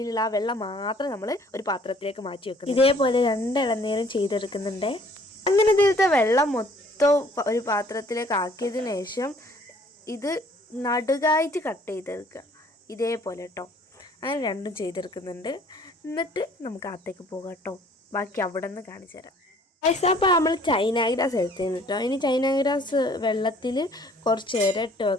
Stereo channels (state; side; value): normal; both; correlation 0.57